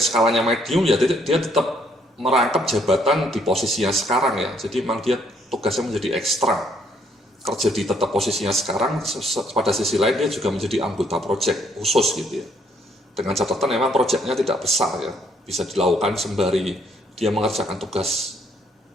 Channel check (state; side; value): normal; both; correlation 0.68